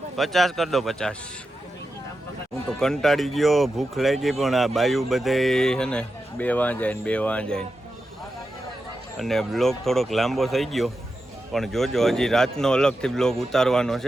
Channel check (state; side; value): normal; both; correlation 0.90